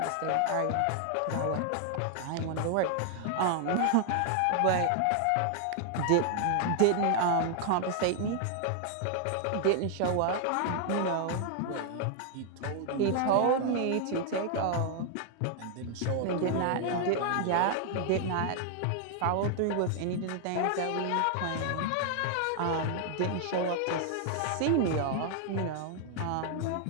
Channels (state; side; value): different; both; correlation 0.00